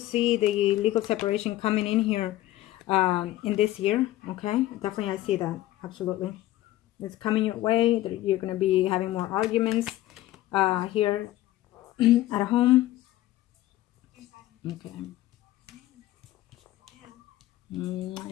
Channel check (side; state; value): right; quieter; 15.4 dB